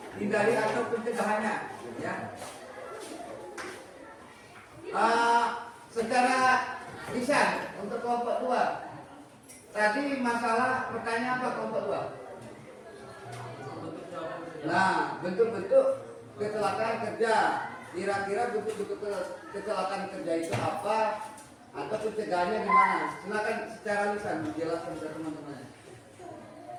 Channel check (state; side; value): identical; both; correlation 1.00